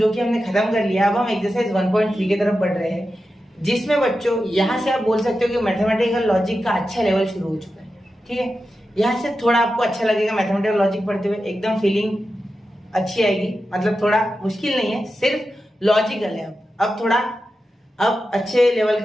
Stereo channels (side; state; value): both; normal; correlation 0.91